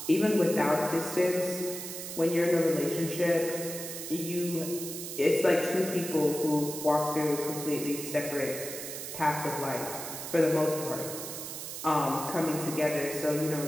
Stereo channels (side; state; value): right; noise; hiss, 8 dB below the sound